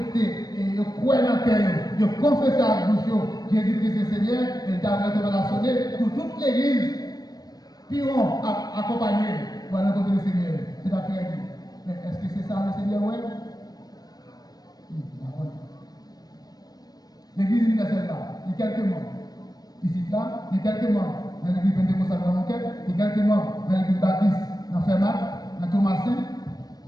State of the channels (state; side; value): late; right; 0.19 ms